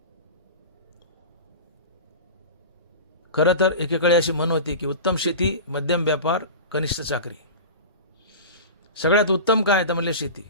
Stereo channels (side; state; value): both; inverted; correlation -0.30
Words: खरं तर एकेकाळी अशी म्हण होती की उत्तम शेती, मध्यम व्यापार, कनिष्ठ चाकरी. सगळ्यात उत्तम काय तर म्हणले शेती,